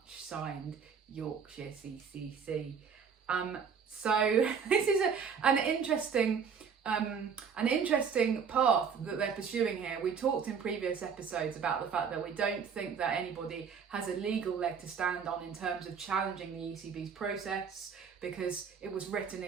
signed Yorkshire CCC. So this is an interesting path that they're pursuing here. We talked in previous episodes about the fact that we don't think that anybody has a legal leg to stand on in terms of challenging the ECB's process, because it was written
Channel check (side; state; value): left; quieter; 6.4 dB